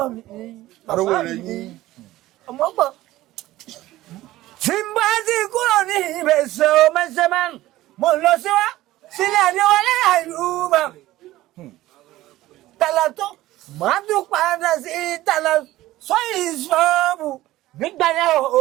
mi. Arówó rẹ̀ yín. Ọmọ gbọ́. Simbati kúrò ní ìbẹ̀sẹ̀ ọmọṣẹ́mán. Mo lọ sílẹ̀ àdéwọlé àìlúmọ̀. Tàlà tó, màá tún padà sí tàlà sọ́yìn ṣọ́ọ̀bù. Nígbà yẹn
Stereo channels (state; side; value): quieter; left; 16.3 dB